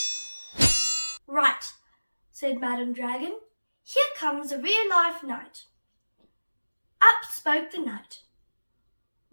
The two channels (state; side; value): inverted; both; correlation -1.00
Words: Right, said Madam Dragon, here comes a real-life knight. Up spoke the knight.